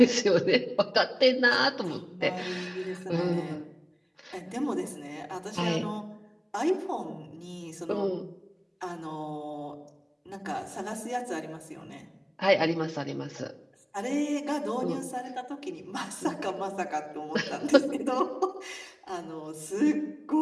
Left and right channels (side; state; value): both; identical; correlation 1.00